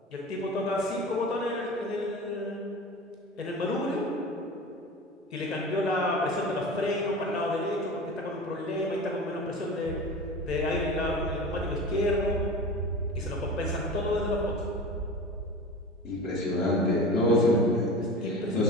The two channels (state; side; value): normal; both; correlation 0.33